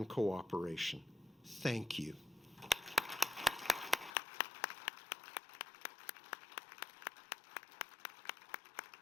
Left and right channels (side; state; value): right; drops out; at 4.2 s